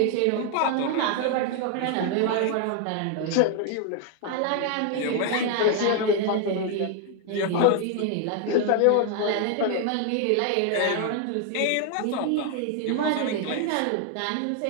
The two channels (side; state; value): both; different; correlation 0.00